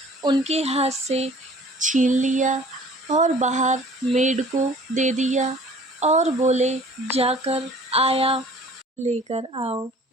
उनके हाथ से छीन लिया और बाहर मेड को दे दिया और बोले, जाकर आया लेकर आओ,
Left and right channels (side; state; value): both; normal; correlation 0.50